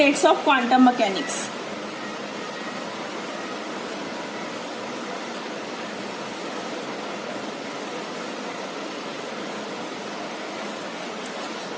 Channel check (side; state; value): both; identical; correlation 1.00